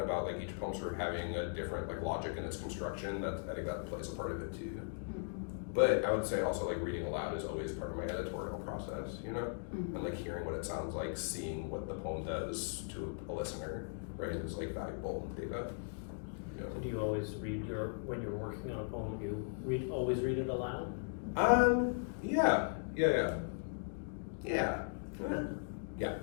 about like each poem sort of having a different like logic in its construction, I think that plays a part of it too. But I would say also like reading aloud is always part of my editorial process, you know? And like hearing what it sounds like, seeing what the poem does to a listener, right, is like valuable data. You know? So do you always read when you're working on a poem, you always read it aloud? Yeah. Yeah.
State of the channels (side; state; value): right; silent; digital silence